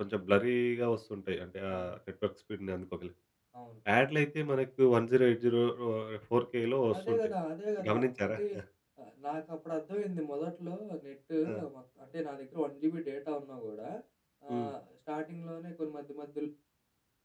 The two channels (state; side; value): identical; both; correlation 1.00